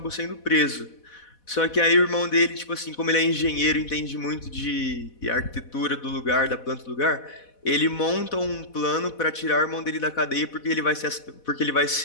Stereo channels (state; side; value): late; right; 4.1 ms